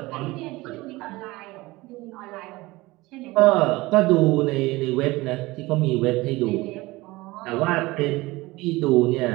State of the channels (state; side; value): quieter; left; 20.7 dB